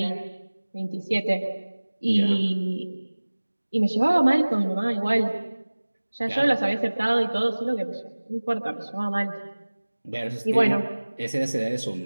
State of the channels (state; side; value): inverted; both; correlation -1.00